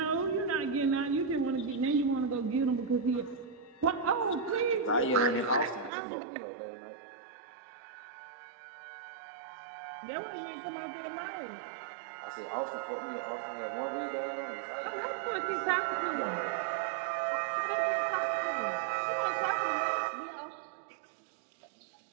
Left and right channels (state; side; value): drops out; left; at 5.9 s